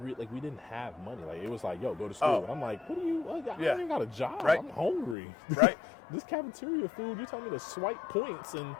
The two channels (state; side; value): drops out; right; at 5.2 s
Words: didn't have money. Like it was like, yo, go to school. Oh. I'm like, what do you? I don't Yeah. even got a job. Right. I'm hungry. Right. This cafeteria food, you telling me to swipe points, and